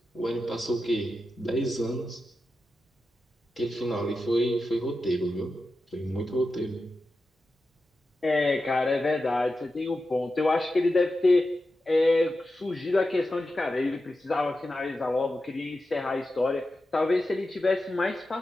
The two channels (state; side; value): normal; both; correlation 0.91